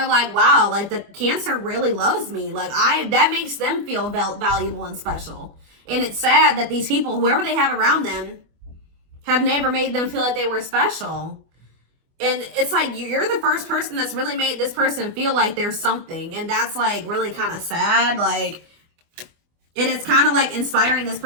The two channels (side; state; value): left; late; 24 ms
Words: like, wow, like the Cancer really loves me. Like that makes them feel valuable and special. And it's sad that these people, whoever they have around them, have never made them feel like they were special. And it's like, you're the first person that's really made this person feel like there's something. And that's like really kind of sad. Like, and it's kind of like inspiring this